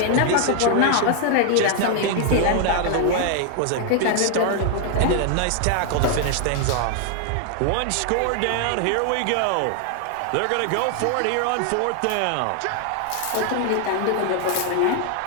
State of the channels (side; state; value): both; different; correlation 0.00